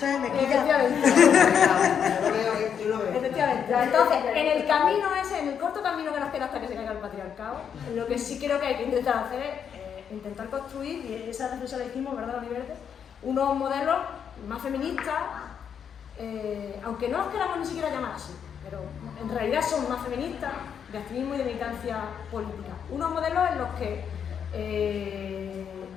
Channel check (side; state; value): right; quieter; 7.8 dB